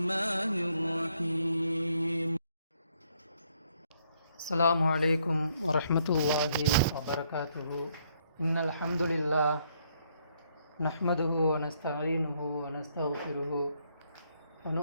الرحيم. السلام عليكم ورحمة الله وبركاته. إن الحمد لله نحمده ونستعينه ونستغفره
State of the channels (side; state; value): both; inverted; correlation -0.71